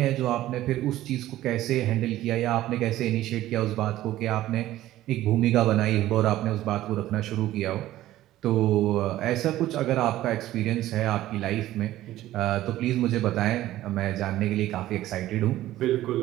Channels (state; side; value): quieter; left; 14.6 dB